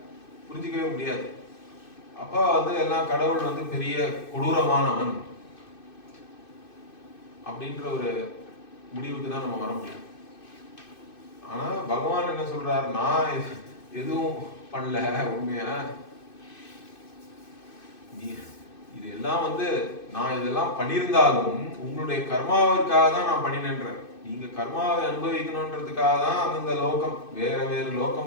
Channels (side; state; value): right; late; 2.6 ms